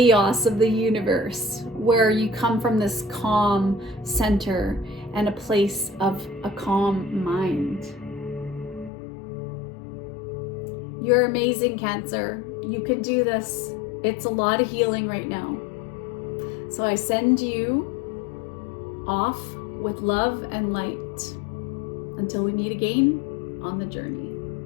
of the universe, where you come from this calm center and a place of a calm mind. You're amazing, Cancer. You can do this. It's a lot of healing right now. So I send you off with love and light. Until we meet again on the journey.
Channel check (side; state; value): right; drops out; at 8.9 s